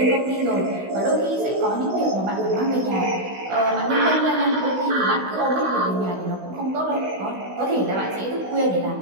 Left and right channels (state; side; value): late; left; 16 ms